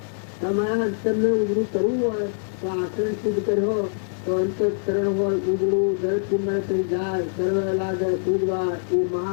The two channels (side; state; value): right; silent; digital silence